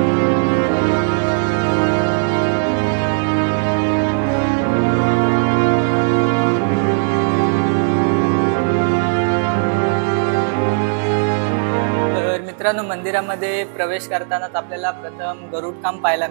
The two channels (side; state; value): left; silent; digital silence